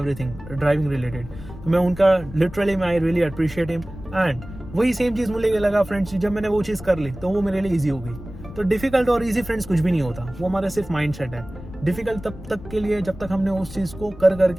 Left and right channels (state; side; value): noise; left; rumble, 14 dB below the sound